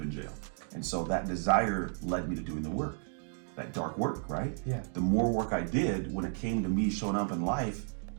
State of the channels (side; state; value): left; silent; 56 dB below the other